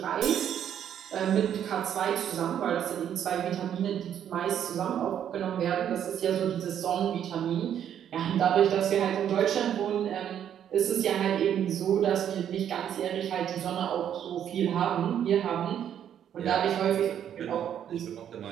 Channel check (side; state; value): left; quieter; 9.6 dB